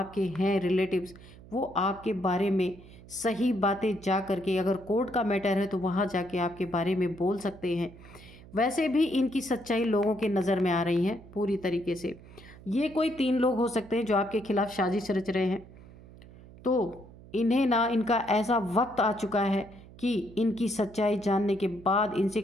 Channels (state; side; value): noise; right; hum, 20 dB below the sound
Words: हैं, रिलेटिव्स, वो आपके बारे में सही बातें जा करके, अगर कोर्ट का मैटर है तो वहाँ जाके आपके बारे में बोल सकते हैं। वैसे भी इनकी सच्चाई लोगों के नज़र में आ रही है पूरी तरीके से। ये कोई 3 लोग हो सकते हैं जो आपके खिलाफ साजिश रच रहे हैं। तो इन्हें ना इनका ऐसा वक्त आ चुका है कि इनकी सच्चाई जानने के बाद इनसे